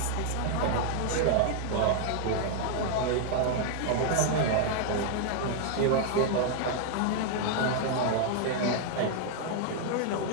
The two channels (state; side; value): different; both; correlation 0.00